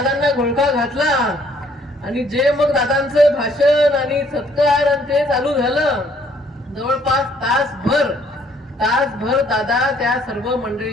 घोळका घातला आणि जे मग दादांचं भाषण आणि सत्कार आणि ते चालू झालं, जवळपास तासभर दादा त्या सर्व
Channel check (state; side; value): normal; both; correlation 0.63